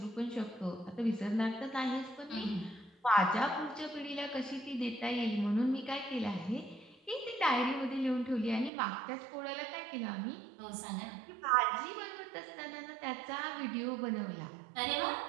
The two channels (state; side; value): drops out; left; at 8.7 s